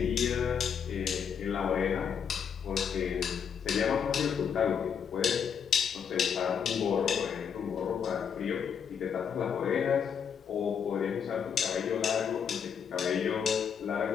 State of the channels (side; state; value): right; quieter; 7.4 dB